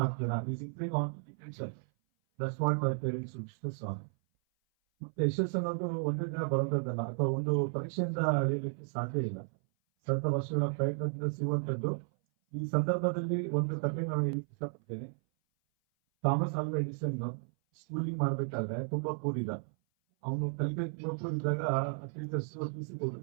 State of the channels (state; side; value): silent; left; 55 dB below the other